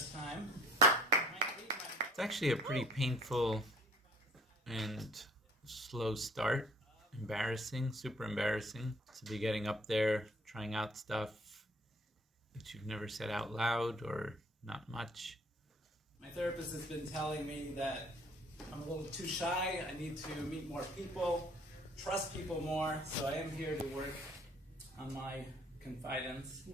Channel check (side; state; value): both; normal; correlation 0.55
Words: time. It's actually a pretty painful and slow start. Embarrassing, super embarrassing to be getting up there, trying out stuff that you've never said out loud or not much. My therapist has been telling me that I'm a little too shy. I need to meet more people, trust people more. So I am here to work on my confidence.